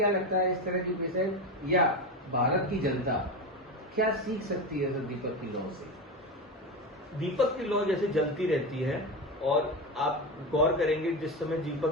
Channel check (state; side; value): normal; both; correlation 0.19